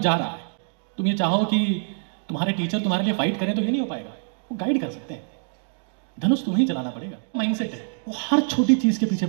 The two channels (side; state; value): left; silent; digital silence